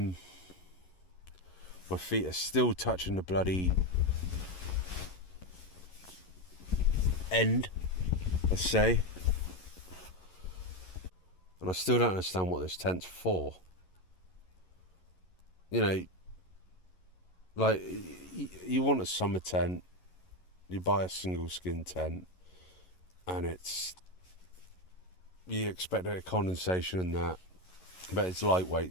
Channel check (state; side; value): late; right; 11 ms